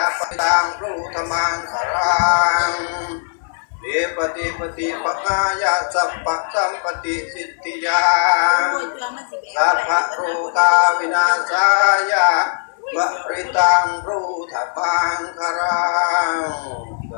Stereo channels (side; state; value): right; silent; digital silence